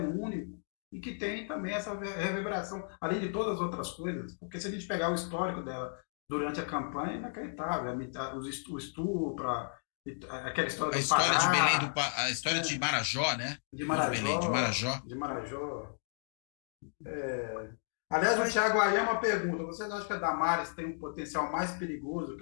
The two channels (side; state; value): right; silent; digital silence